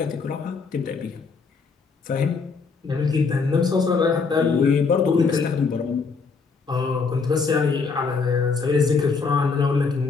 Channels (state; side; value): quieter; right; 4.8 dB